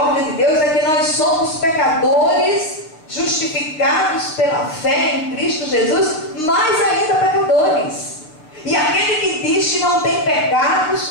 de Deus é que nós somos pecadores justificados pela fé em Cristo Jesus, mas ainda pecadores. E aquele que diz que não tem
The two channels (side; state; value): right; late; 6.5 ms